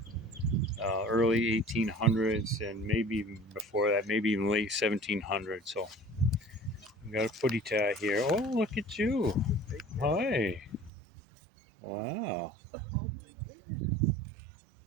early 1800s and maybe even before that, maybe even late 1700s. So we got a footy tie here. Oh, look at you. Hi. Wow.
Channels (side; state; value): left; drops out; at 10.9 s